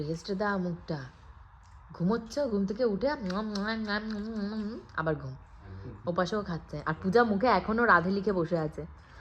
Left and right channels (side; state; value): both; identical; correlation 1.00